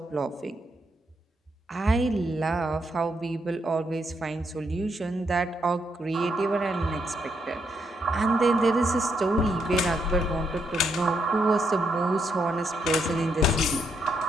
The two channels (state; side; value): normal; both; correlation 0.77